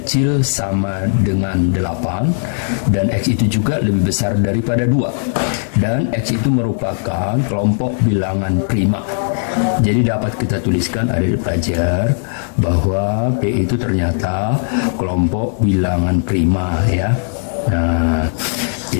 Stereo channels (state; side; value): silent; right; digital silence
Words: sama dengan 8 dan X itu juga lebih besar daripada 2 dan X itu merupakan kelompok bilangan prima. Jadi dapat kita tuliskan adik-adik pelajar bahwa P itu ternyata kelompok bilangan prima ya. Nah,